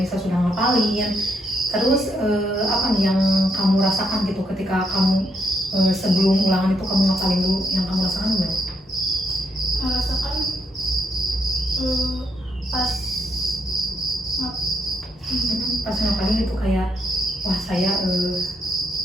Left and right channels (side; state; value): both; normal; correlation 0.76